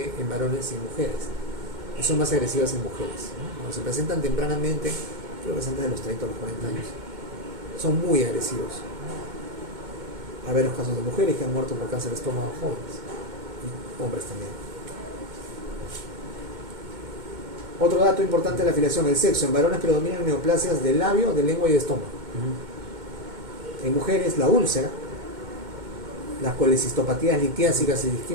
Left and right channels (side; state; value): left; late; 2.2 ms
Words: en varones y en mujeres. Y son más agresivas en mujeres. Cuando se presentan tempranamente, creo que presentan de los 30 a los 40 años. Son muy agresivos. Hay varios casos de mujeres que han muerto por cáncer de estómago jóvenes. Y hombres también. Otro dato importante de la afiliación, el sexo. En varones predominan neoplasias del labio, de lengua y de estómago. En mujeres, la úlcera, las colecistopatías litiásicas y